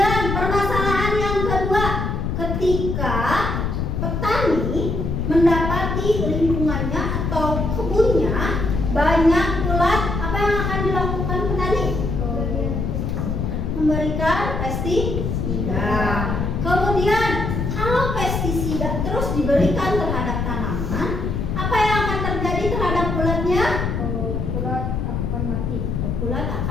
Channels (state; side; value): noise; left; rumble, 1 dB below the sound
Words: permasalahan yang kedua, ketika petani mendapati lingkungannya atau kebunnya banyak ulat, apa yang akan dilakukan petani? Memberikan pestisida. Kemudian kalau pestisida terus diberikan terhadap tanaman, apa yang akan terjadi terhadap ulatnya? Ulat akan mati. Ulat